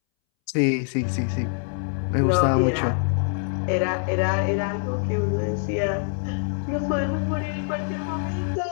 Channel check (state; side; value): silent; right; 62 dB below the other